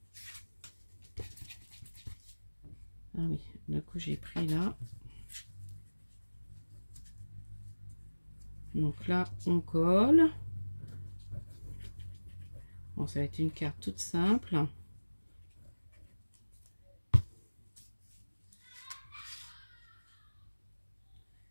Ah oui, du coup, j'ai pris là. Donc là, on colle. Bon, ça va être une carte toute simple.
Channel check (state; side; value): inverted; both; correlation -1.00